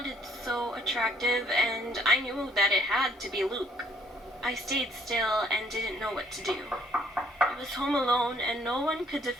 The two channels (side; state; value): both; normal; correlation 0.64